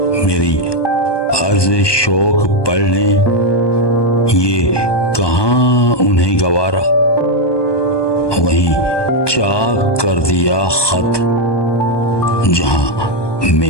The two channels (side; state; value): right; late; 1.2 ms